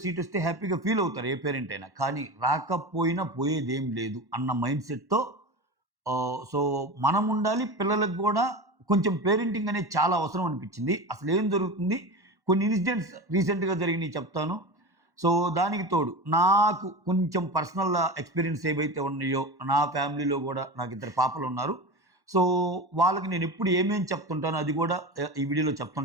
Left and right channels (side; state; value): left; late; 1.1 ms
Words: సీట్ వస్తే హ్యాపీగా ఫీల్ అవుతారు ఏ పేరెంట్ అయినా. కానీ రాకపోయినా పోయేదేం లేదు అన్న మైండ్ సెట్‌తో మనం ఉండాలి. పిల్లలకు గూడా కొంచెం పేరెంటింగ్ అనేది చాలా అవసరం అనిపించింది. అసలేం జరుగుతుంది? కొన్ని ఇన్సిడెంట్స్ రీసెంట్‌గా జరిగినయి చెప్తాను. దానికి తోడు నాకు కొంచెం పర్సనల్ ఎక్స్‌పీరియన్స్ ఏవైతే ఉన్నాయో, నా ఫ్యామిలీలో గూడా నాకిద్దరు పాపలున్నారు. సో, వాళ్ళకి నేనెప్పుడు ఏమేం చెప్తుంటానో అది గూడా ఈ వీడియోలో